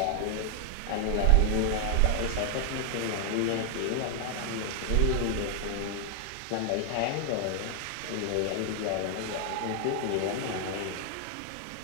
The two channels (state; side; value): different; both; correlation 0.00